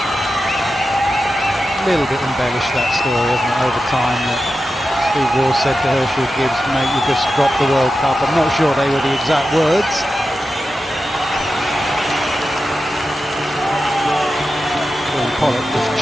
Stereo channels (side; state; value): both; normal; correlation 0.91